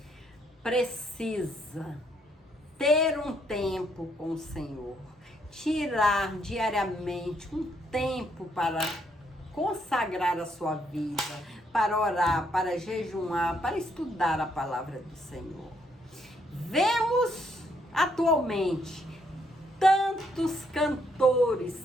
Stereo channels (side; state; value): both; normal; correlation 0.72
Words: precisa ter um tempo com o Senhor, tirar diariamente um tempo para consagrar a sua vida, para orar, para jejuar, para estudar a palavra do Senhor. Vemos atualmente tantos cantores,